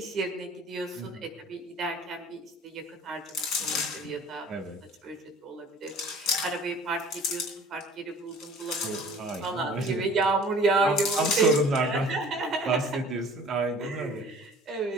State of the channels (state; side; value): normal; both; correlation 0.48